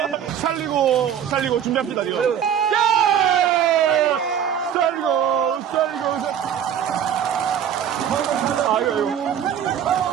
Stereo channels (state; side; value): quieter; left; 9.0 dB